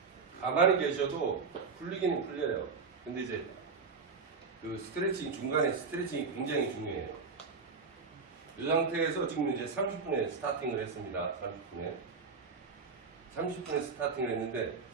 가만히 계셔도 풀리기는 풀려요. 근데 이제 그 스트레칭 중간에 스트레칭이 굉장히 중요해요. 이 상태에서 지금 이제 30분에 스타팅을 했습니다. 30분에 스타팅을 했는데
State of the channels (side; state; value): left; quieter; 5.0 dB